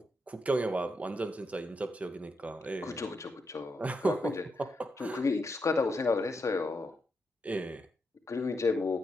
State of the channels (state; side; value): normal; both; correlation 0.83